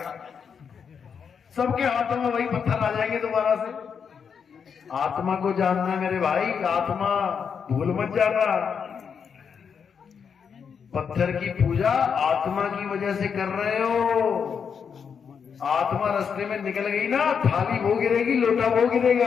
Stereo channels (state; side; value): quieter; right; 6.7 dB